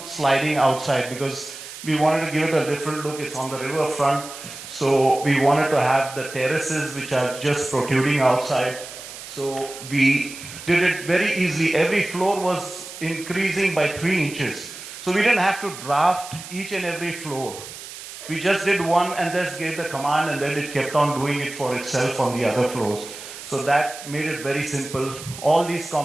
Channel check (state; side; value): noise; right; hiss, 13 dB below the sound